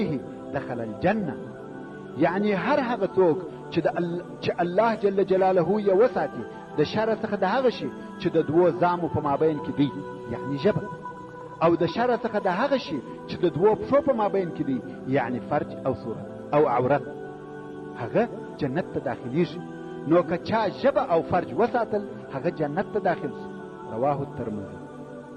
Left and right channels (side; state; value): both; identical; correlation 1.00